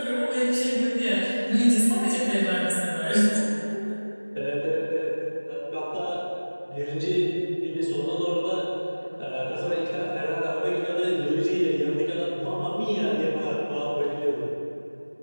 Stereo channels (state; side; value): inverted; both; correlation -1.00